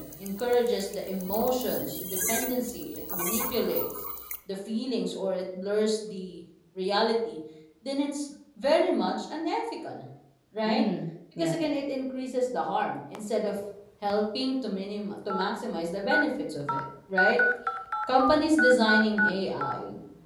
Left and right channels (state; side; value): identical; both; correlation 1.00